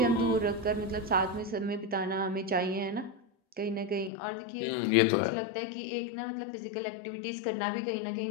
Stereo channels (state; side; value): drops out; right; at 4.1 s